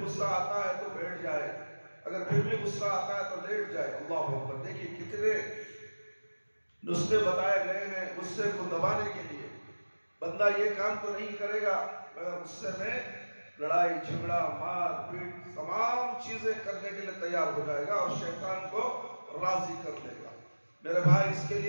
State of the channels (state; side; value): inverted; both; correlation -1.00